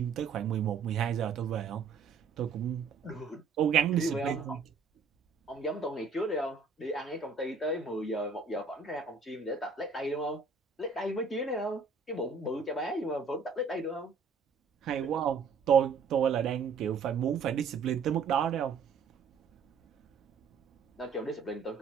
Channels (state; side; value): quieter; left; 5.2 dB